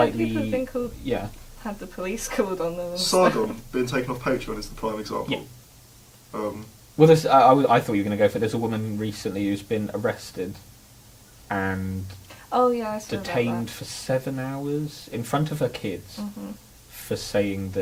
people have been called, yeah. had the police called on them. And stuff. Sargon being taken off Patreon is the prime example. Yeah. Um, Well, there's, I thought you were going to go for. There's a woman recently who's been arrested and Oh yeah, I saw detained for 7 hours in front of her kids That. for saying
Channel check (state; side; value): identical; both; correlation 1.00